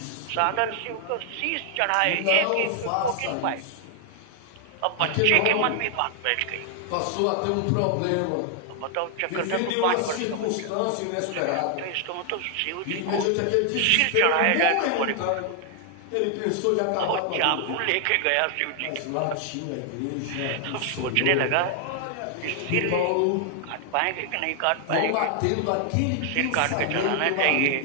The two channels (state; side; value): different; both; correlation 0.00